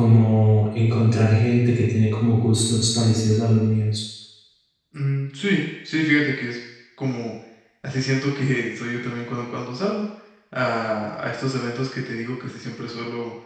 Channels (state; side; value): identical; both; correlation 1.00